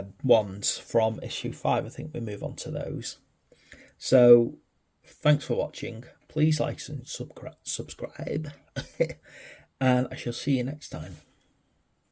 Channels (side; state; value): both; identical; correlation 1.00